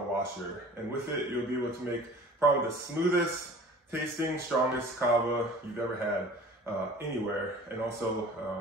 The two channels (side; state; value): both; normal; correlation 0.44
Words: washer, and with it you'll be able to make probably the smoothest tasting, strongest Kawa you've ever had anywhere, and also